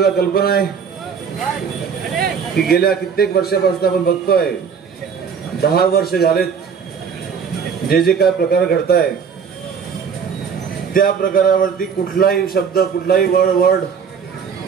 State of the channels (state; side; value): quieter; left; 6.6 dB